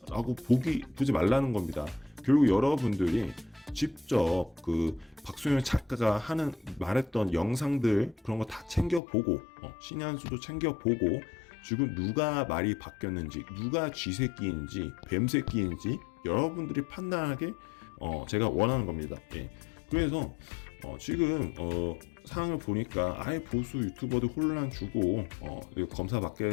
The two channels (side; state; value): right; drops out; at 9.0 s